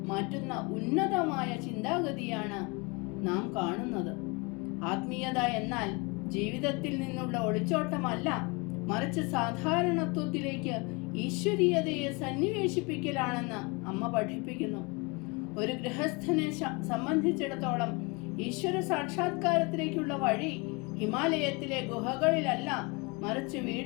മാറ്റുന്ന ഉന്നതമായ ചിന്താഗതിയാണ് നാം കാണുന്നത്. ആത്മീയത എന്നാൽ ജീവിതത്തിൽ നിന്നുള്ള ഒളിച്ചോട്ടമല്ല, മറിച്ച് സാധാരണത്വത്തിലേക്ക് ഈശ്വരീയതയെ സന്നിവേശിപ്പിക്കലാണെന്ന് അമ്മ പഠിപ്പിക്കുന്നു. ഒരു ഗൃഹസ്ഥനെ സംബന്ധിച്ചിടത്തോളം ഈശ്വര സാക്ഷാത്കാരത്തിലേക്കുള്ള വഴി ഹിമാലയത്തിലെ ഗുഹകളിലല്ല, മറിച്ച്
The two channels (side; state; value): right; quieter; 28.7 dB